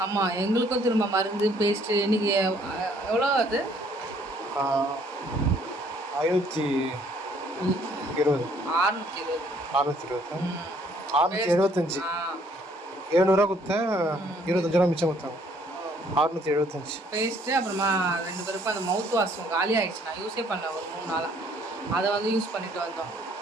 ஆமாம், எங்களுக்கும் திரும்ப மருந்து பேஸ்ட்டு. இன்னைக்கு எவ்வளோ அது? 520. 675. 700 கொடுத்தேன், 25 ரூபா மிச்சம் கொடுத்தாங்க. 675 பேஸ்ட்டு. அப்புறமா 2 பேருக்கும் அந்த மவுத் வாஷும் காலி ஆயிடுச்சு. நான் யூஸே பண்ணேன் ஒரு 3 நாளாக. அதை வந்து யூஸ் பண்ணிட்டு வந்தோம்.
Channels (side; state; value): both; normal; correlation 0.63